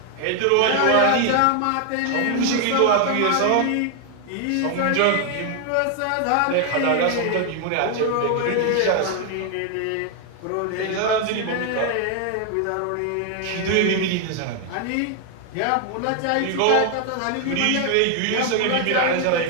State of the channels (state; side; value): different; both; correlation 0.00